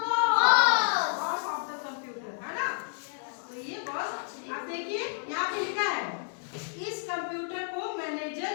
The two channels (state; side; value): silent; right; digital silence